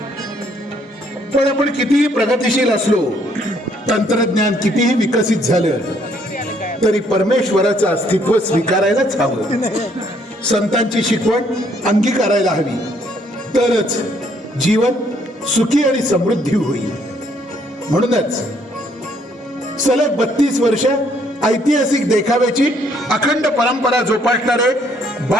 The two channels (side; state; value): both; normal; correlation 0.67